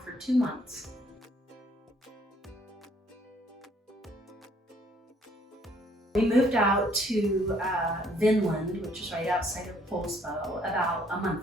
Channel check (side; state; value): both; normal; correlation 0.64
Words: for 2 months. We moved out to Vinland, which is right outside of Poulsbo, about a